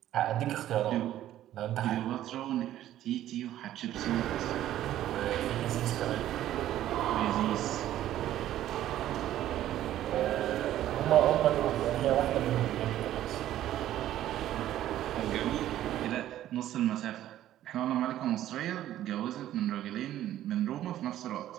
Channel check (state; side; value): quieter; left; 12.8 dB